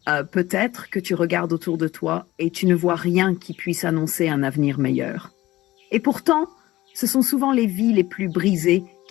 Peut-être que tu regardes autour de toi et tu ne vois rien qui puisse annoncer un avenir meilleur. Et pourtant, ce sont souvent les vies les plus brisées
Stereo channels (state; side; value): quieter; right; 17.0 dB